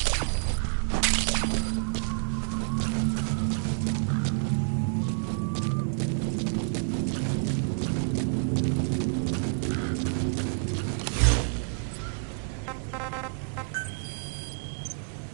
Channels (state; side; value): silent; left; digital silence